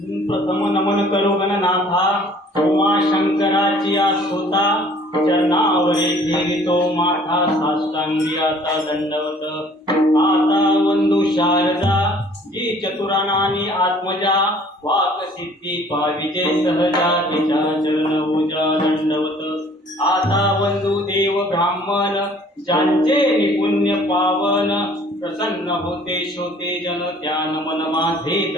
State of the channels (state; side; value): normal; both; correlation 0.54